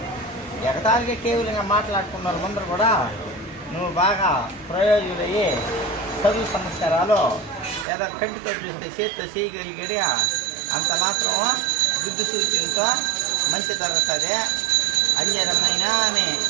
ఎగతాళిగా కేవలంగా మాట్లాడుకున్నారు ముందర కూడా నువ్వు బాగా ప్రయోజకులయ్యి చదువు సంస్కారాలు ఏదో కంటితో చూస్తే చేతితో చేయగలిగడి అంత మాత్రం బుద్ధి సూచనతో మంచి జరుగుతుంది అంజరమైన ఆమె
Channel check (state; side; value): drops out; left; at 7.9 s